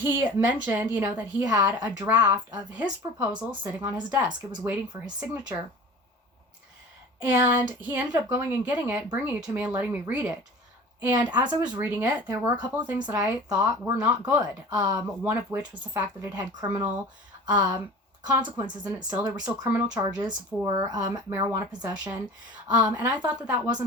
mentioned, that he had a draft of his proposal sitting on his desk. It was waiting for his signature. And he ended up going and getting it, bringing it to me and letting me read it. And as I was reading it, there were a couple of things that I thought were not good. One of which was the fact that it had criminal consequences in it still. There were still criminal charges for marijuana possession. And I thought that that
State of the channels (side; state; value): both; normal; correlation 0.40